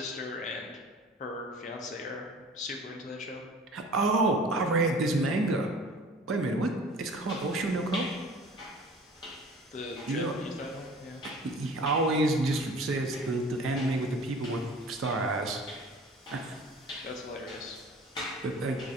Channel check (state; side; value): normal; both; correlation 0.45